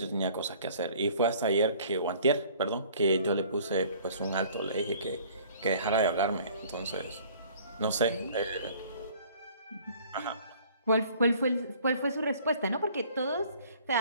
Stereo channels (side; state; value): both; inverted; correlation -0.53